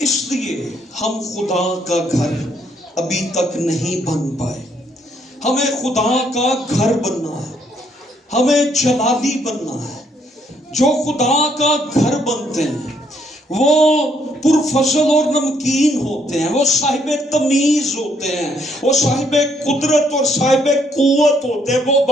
لیے ہم خدا کا گھر ابھی تک نہیں بن پائے۔ ہمیں خدا کا گھر بننا ہے، ہمیں جلالی بننا ہے۔ جو خدا کا گھر بنتے ہیں وہ پرفضل اور نمکین ہوتے ہیں، وہ صاحب تمیز ہوتے ہیں، وہ صاحب قدرت اور صاحب قوت ہوتے ہیں، وہ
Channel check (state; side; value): normal; both; correlation 0.70